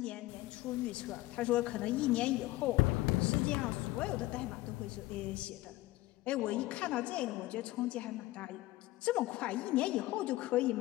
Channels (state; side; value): quieter; right; 18.0 dB